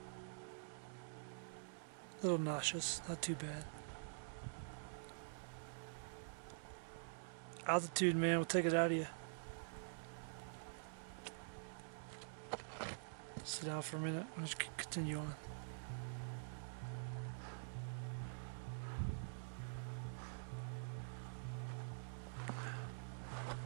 A little nauseous, not too bad. Altitude, man, will take it out of you. Sit down for a minute. I'll just continue on.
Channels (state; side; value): silent; left; digital silence